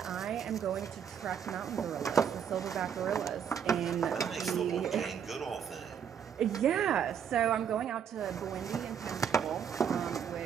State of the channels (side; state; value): left; quieter; 7.9 dB